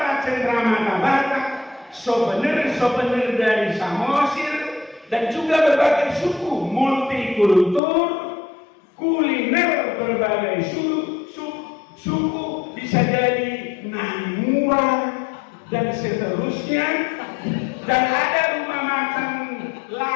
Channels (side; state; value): right; drops out; at 7.8 s